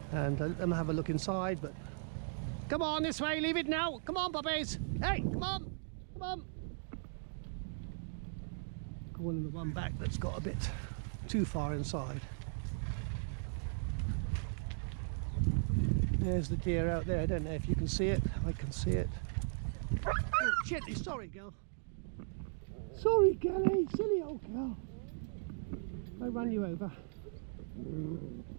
and let them have a look inside. But come on this way, leave it now. Come on, puppies. Hey, come on, come on. Calling the one back that's got a bit too far inside. There's the deer out there. I don't know if you can see it. I can see it. Oh, shit, sorry, girl. Sorry, girlie, silly old girl. I ran you over.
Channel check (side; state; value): left; silent; digital silence